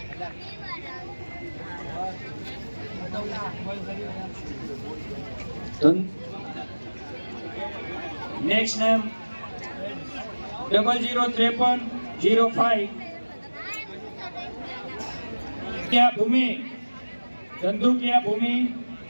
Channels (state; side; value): inverted; both; correlation -1.00